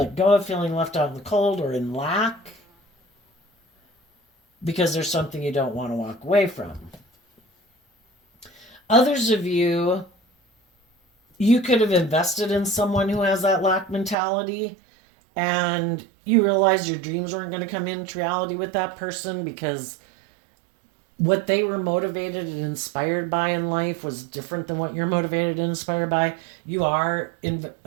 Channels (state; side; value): drops out; left; at 14.2 s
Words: go of feeling left out in the cold or in lack because there's something you don't want to walk away from. Others of you, you could have invested in someone who has that lack mentality, and you realize your dreams weren't going to come into reality with that person because what they were motivated and inspired by in life was different than what you're motivated and inspired by. You are